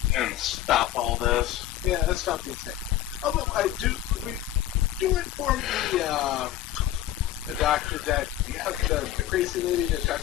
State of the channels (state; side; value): quieter; right; 13.2 dB